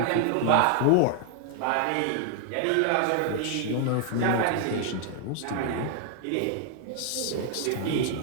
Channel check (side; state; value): both; different; correlation 0.00